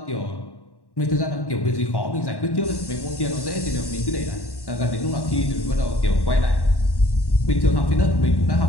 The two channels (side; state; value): right; late; 1.1 ms